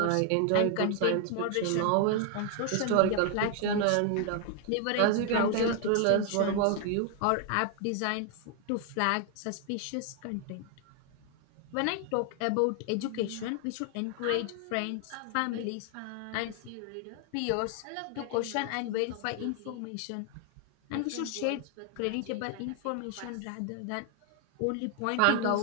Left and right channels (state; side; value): different; both; correlation 0.00